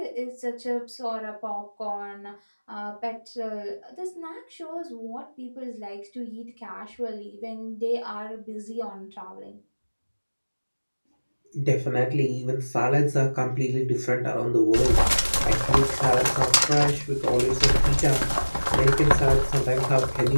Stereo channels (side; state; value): both; inverted; correlation -1.00